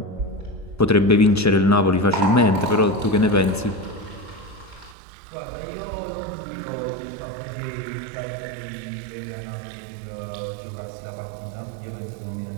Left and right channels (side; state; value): left; drops out; at 5.0 s